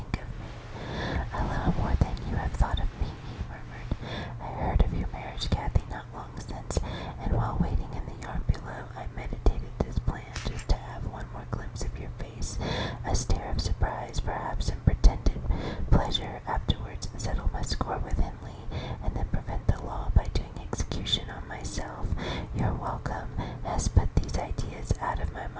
of me. A little more than you have thought of me," he murmured. "I heard of your marriage, Cathy, not long since, and while waiting in the yard below, I meditated this plan, just to have one more glimpse of your face, a stare of surprise, perhaps, and pretended pleasure, afterwards settle my score with Henley, and then prevent the law by doing execution on myself. Your welcome has put these ideas out of my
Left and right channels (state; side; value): identical; both; correlation 1.00